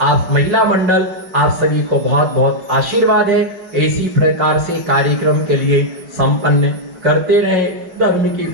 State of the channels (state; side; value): late; left; 4.6 ms